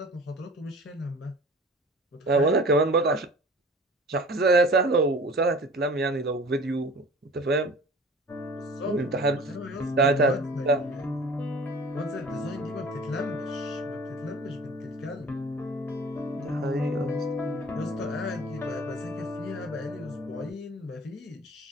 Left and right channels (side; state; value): both; normal; correlation 0.44